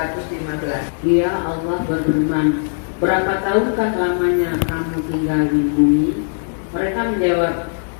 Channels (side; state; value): right; silent; digital silence